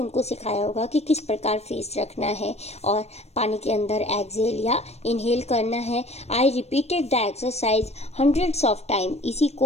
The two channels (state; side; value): late; right; 0.31 ms